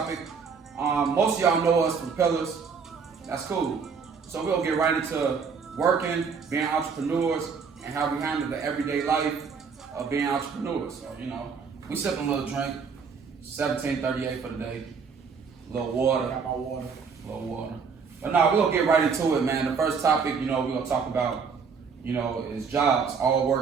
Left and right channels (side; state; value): left; quieter; 5.7 dB